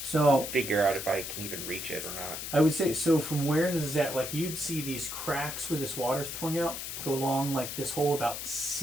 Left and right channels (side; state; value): left; noise; hiss, 6 dB below the sound